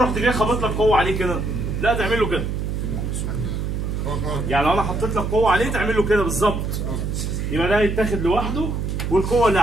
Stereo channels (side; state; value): right; noise; hum, 2 dB below the sound